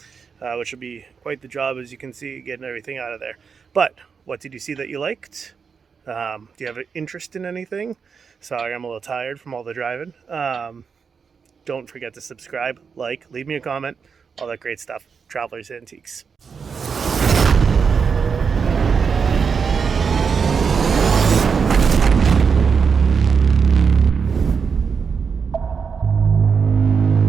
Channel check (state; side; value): quieter; left; 5.9 dB